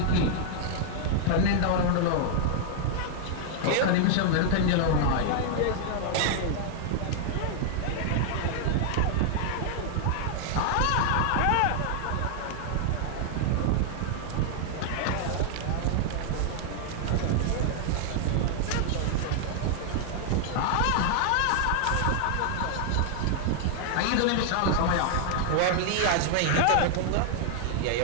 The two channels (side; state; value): both; different; correlation 0.00